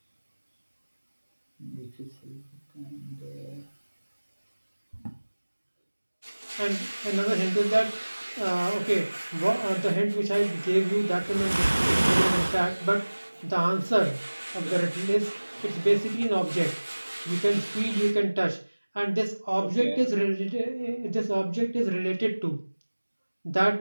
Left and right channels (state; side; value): inverted; both; correlation -1.00